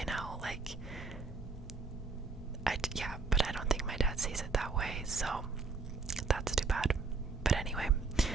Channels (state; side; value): quieter; left; 4.3 dB